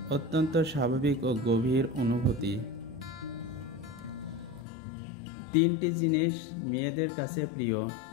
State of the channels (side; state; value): right; drops out; at 4.7 s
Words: অত্যন্ত স্বাভাবিক ও গভীর অনুভূতি। তিনটি জিনিস মেয়েদের কাছে প্রিয়।